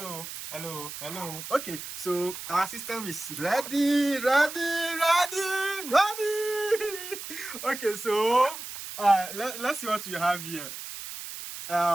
Okay, so our system is ready. Okay, so let's see what we have here.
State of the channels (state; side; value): noise; right; hiss, 10 dB below the sound